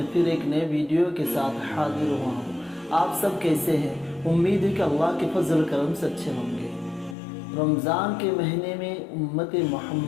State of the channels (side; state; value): right; drops out; at 7.2 s